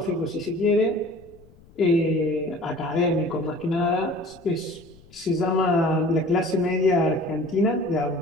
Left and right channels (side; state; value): left; noise; rumble, 26 dB below the sound